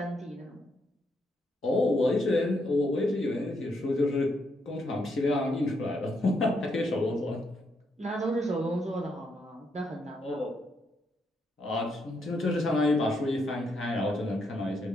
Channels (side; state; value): both; normal; correlation 0.78